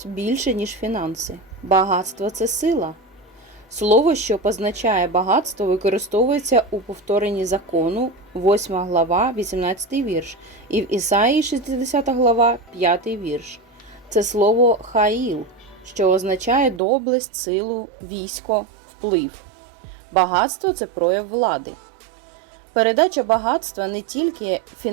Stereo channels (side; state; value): left; drops out; at 16.8 s